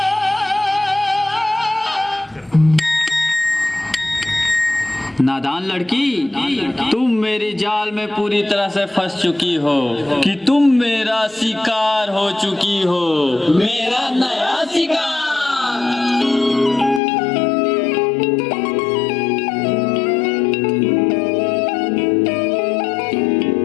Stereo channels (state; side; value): drops out; right; at 17.0 s